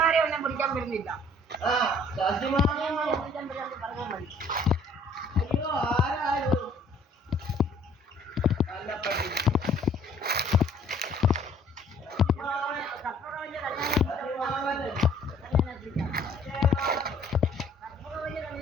പിടിക്കാൻ വരുന്നില്ല. അയ്യോ ആരായോ നല്ല പട്ടി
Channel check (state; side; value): normal; both; correlation 0.58